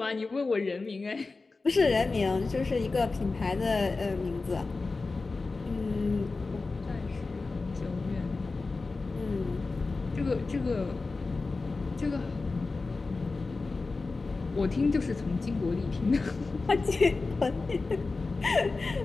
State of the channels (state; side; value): quieter; right; 3.8 dB